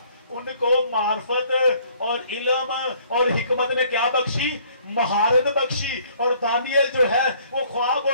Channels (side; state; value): both; inverted; correlation -0.60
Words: ان کو معرفت اور علم اور حکمت نے کیا بخشی؟ مہارت بخشی. اور دانیل جو ہے وہ خواب